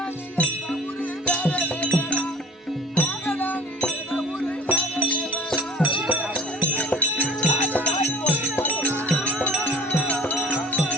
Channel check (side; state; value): both; normal; correlation 0.46